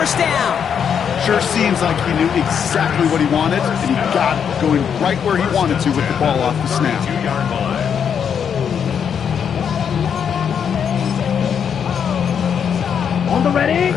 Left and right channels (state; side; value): quieter; right; 7.6 dB